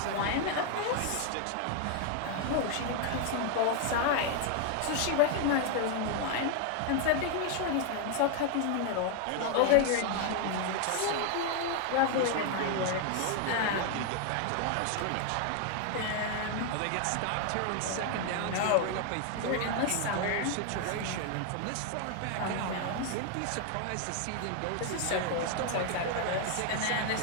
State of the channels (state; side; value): different; both; correlation 0.00